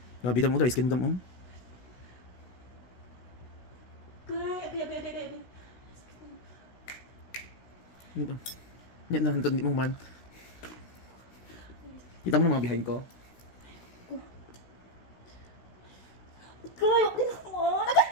Grabe Dam mo, dry skin Dam mo. Agay. Yan na, hindi mo man. Kita mo na mga behind ko. Agay, naman. Agay,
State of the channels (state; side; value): late; right; 16 ms